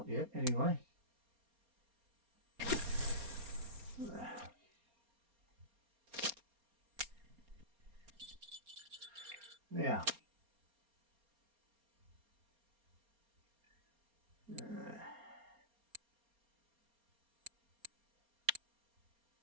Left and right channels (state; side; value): late; left; 4.3 ms